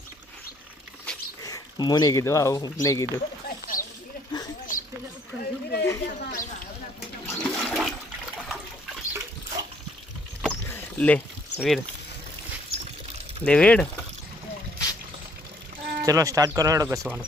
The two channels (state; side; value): normal; both; correlation 0.64